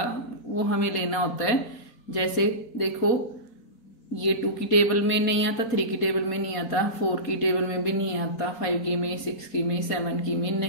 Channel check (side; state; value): right; late; 4.2 ms